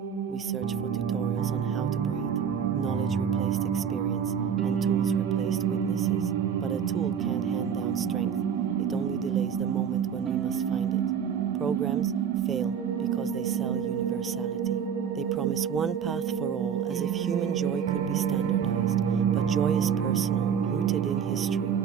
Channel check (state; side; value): quieter; left; 7.7 dB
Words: We search for tutorials on how to breathe. Knowledge replaced experience, and tools replaced witnesses. But a tool can't hand down strength. It only delays the moment when we must find it. Programs fail because they sell universality. They promise one path for all, as if human joy could be standardized. But joy is personal, rooted in history,